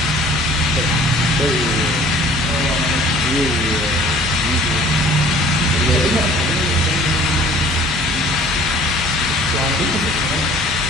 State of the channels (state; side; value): normal; both; correlation 0.51